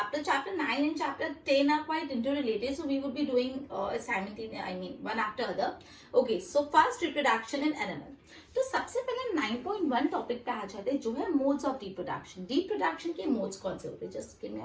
Chapter 9 and chapter 10 are quite interrelated. So we would be doing one after other. Okay, so first reproduction in animal. तो सबसे पहले 9.1 टॉपिक पे आ जाते हैं जो है मोड्स ऑफ रिप्रोडक्शन. रिप्रोडक्शन के मोड्स कौन से होते हैं? Just give me a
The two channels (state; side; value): identical; both; correlation 1.00